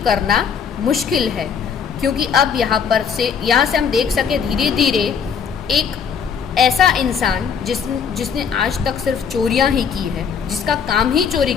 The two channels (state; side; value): quieter; right; 6.9 dB